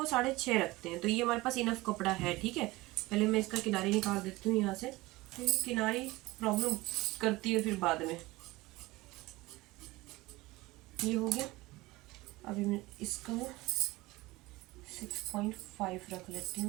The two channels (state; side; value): quieter; left; 20.3 dB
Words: 6.5 रखते हैं। तो ये हमारे पास इनफ कपड़ा है। ठीक है, पहले मैं इसका किनारी निकाल देती हूँ यहाँ से, क्योंकि किनारी प्रॉब्लम करती है फिर बाद में। ये हो गया। अभी मैं इसका 6.5 रख लेती